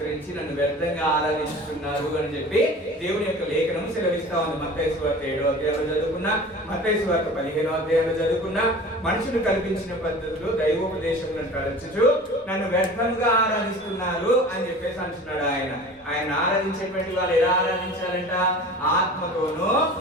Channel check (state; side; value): normal; both; correlation 0.40